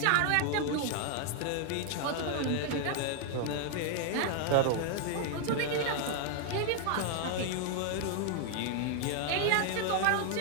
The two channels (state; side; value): different; both; correlation 0.00